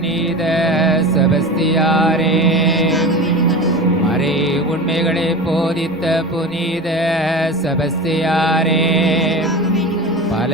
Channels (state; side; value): noise; left; rumble, 29 dB below the sound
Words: செபஸ்தியாரே, மறை உண்மைகளை போதித்த புனித செபஸ்தியாரே,